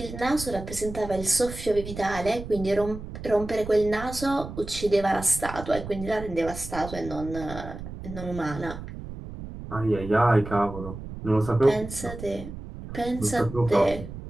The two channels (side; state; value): right; noise; rumble, 11 dB below the sound